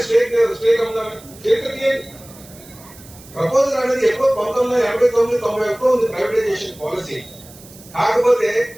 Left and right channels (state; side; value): noise; right; hiss, 21 dB below the sound